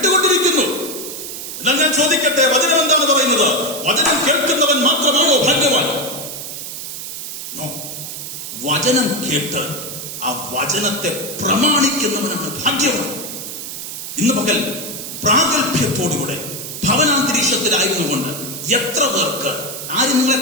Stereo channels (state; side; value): noise; right; hiss, 8 dB below the sound